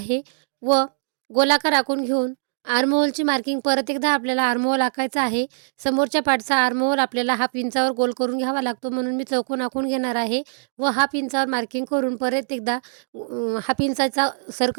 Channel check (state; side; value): silent; left; digital silence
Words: व गोलाकार आखून घेऊन आर्महोलची मार्किंग परत एकदा आपल्याला आर्महोल आखायचा आहे. समोरच्या पार्टचा आर्महोल आपल्याला हाफ इंचावर गोल करून घ्यावा लागतो, म्हणून मी चौकोन आखून घेणार आहे व हाफ इंचावर मार्किंग करून परत एकदा हाफ इंचाचा